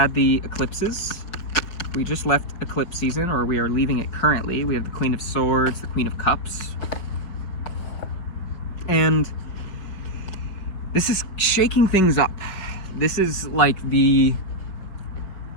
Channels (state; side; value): late; right; 5.3 ms